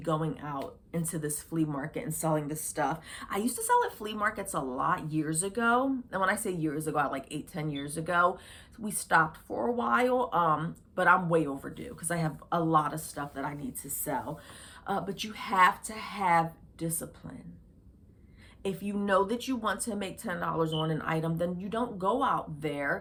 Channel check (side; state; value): both; identical; correlation 1.00